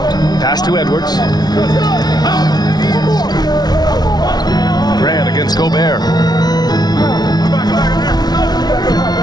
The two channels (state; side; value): late; right; 0.19 ms